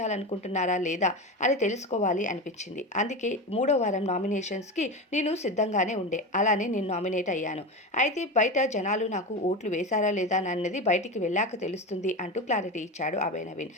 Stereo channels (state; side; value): normal; both; correlation 0.23